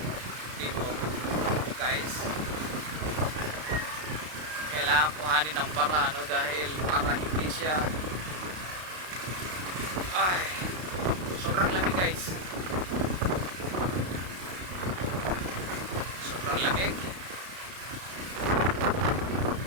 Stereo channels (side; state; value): left; late; 32 ms